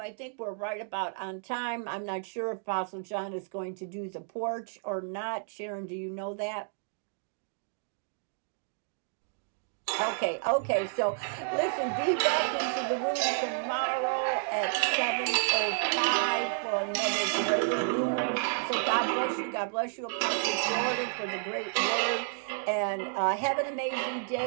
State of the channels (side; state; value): left; silent; digital silence